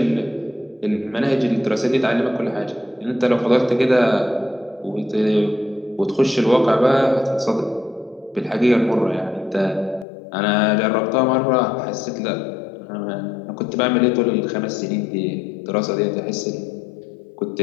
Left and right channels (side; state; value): right; drops out; at 10.1 s